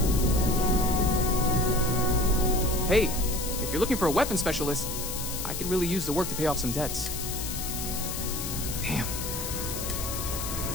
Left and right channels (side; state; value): left; noise; hiss, 5 dB below the sound